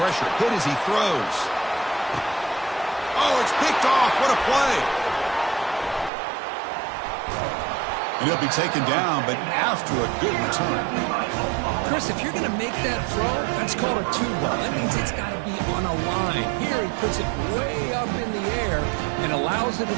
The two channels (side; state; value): left; drops out; at 6.1 s